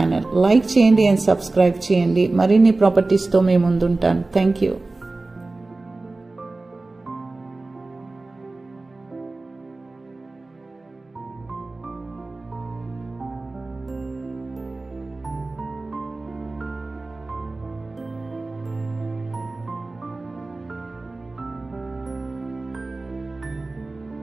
Like చేయండి అండ్ సబ్స్క్రైబ్ చేయండి. మరిన్ని ప్రాపర్టీస్తో మేము ముందుంటాను. Thank you.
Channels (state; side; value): quieter; left; 3.3 dB